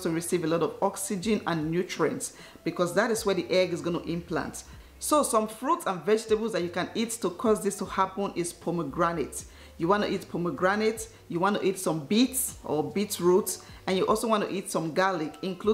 to receive a lot of oxygen and nutrients because that is where the egg is going to implant. So some fruits and vegetables that you can eat to cause this to happen is pomegranate. You want to eat pomegranate, you want to eat some beets or beetroot, and you also want to eat some garlic.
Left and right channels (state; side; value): identical; both; correlation 1.00